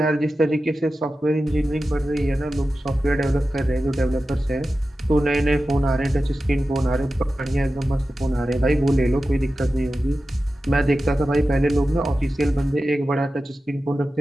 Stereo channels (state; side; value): normal; both; correlation 0.93